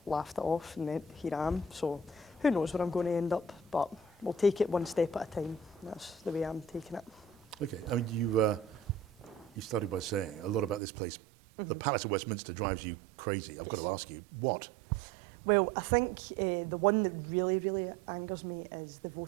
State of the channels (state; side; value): drops out; left; at 10.8 s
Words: laughed it off, and then here I am. So who knows where I'm going to end up, but we'll take it one step at a time. That's the way I'm taking it. Okay, you started by saying a lot about this place. The Palace of Westminster drives you crazy. I've got to ask you, what? Well, I think the one that really, really angers me is the